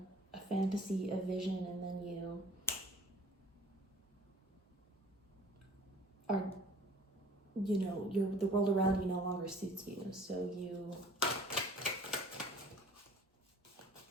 fantasy, a vision, and then you are, the world around you no longer suits you. So you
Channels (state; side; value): normal; both; correlation 0.51